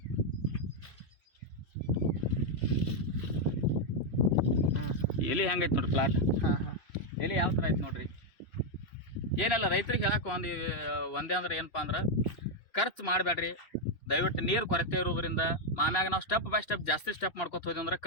ಎಲ್ಲಿ ಹೆಂಗೈತಿ ನೋಡ್ರಿ ಪ್ಲಾಟ್. ಎಲ್ಲಿ ಯಾವ ಥರ ಐತಿ ನೋಡ್ರಿ. ಏನೆಲ್ಲ ರೈತರಿಗೆ ಹೇಳಕ್ಕೆ ಒಂದೇ ಅಂದ್ರೆ ಏನಪ್ಪ ಅಂದ್ರೆ, ಖರ್ಚು ಮಾಡಬೇಡ್ರಿ ದಯವಿಟ್ಟು. ನೀರು ಕೊರತೆ ಇರೋದ್ರಿಂದ ಆಮ್ಯಾಗ ನಾವು ಸ್ಟೆಪ್ ಬೈ ಸ್ಟೆಪ್ ಜಾಸ್ತಿ ಸ್ಟೆಪ್ ಮಾಡ್ಕೊತ ಹೋದ್ವಿ ಅಂದ್ರೆ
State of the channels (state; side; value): late; right; 2.6 ms